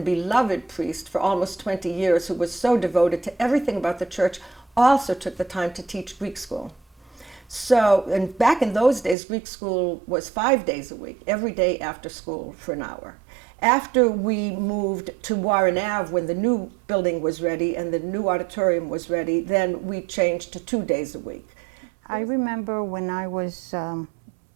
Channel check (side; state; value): left; drops out; at 9.2 s